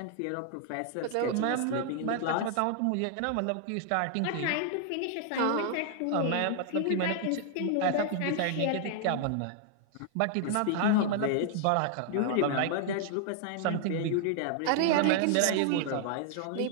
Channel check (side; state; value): both; different; correlation 0.00